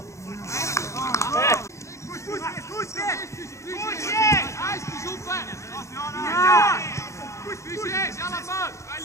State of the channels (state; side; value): late; right; 0.14 ms